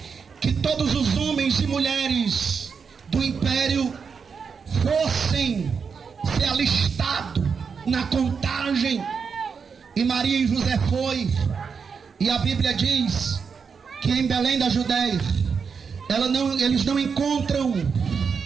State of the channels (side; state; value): left; quieter; 5.9 dB